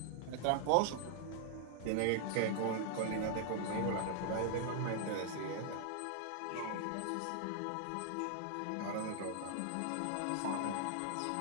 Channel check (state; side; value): different; both; correlation 0.00